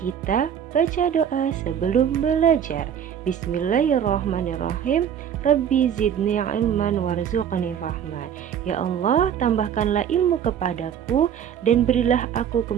baca doa sebelum belajar. Bismillahirrahmanirrahim. Rabbi zidni ilman warzuqni fahman. Ya Allah, tambahkanlah ilmu kepadaku dan berilah aku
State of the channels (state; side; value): quieter; left; 8.8 dB